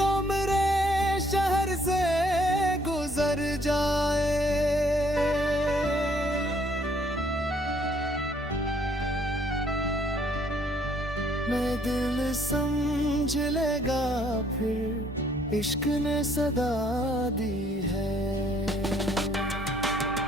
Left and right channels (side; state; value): both; normal; correlation 0.65